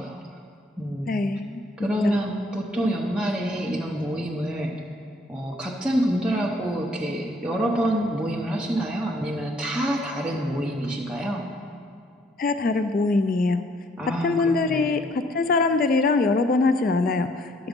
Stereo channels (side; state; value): both; normal; correlation 0.64